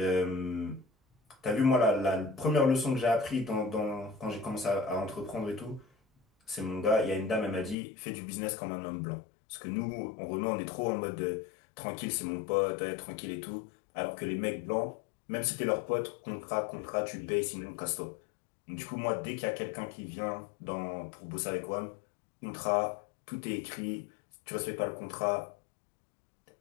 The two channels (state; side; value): drops out; right; at 7.8 s